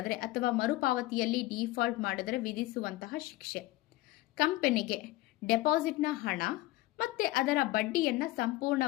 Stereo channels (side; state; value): right; quieter; 18.0 dB